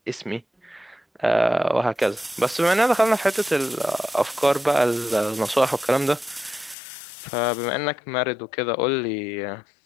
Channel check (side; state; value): right; drops out; at 6.8 s